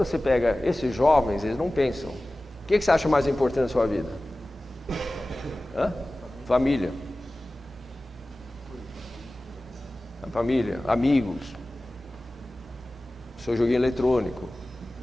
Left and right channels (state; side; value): normal; both; correlation 0.97